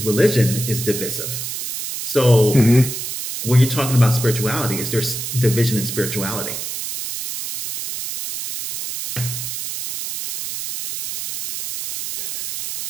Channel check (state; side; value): noise; right; hiss, 6 dB below the sound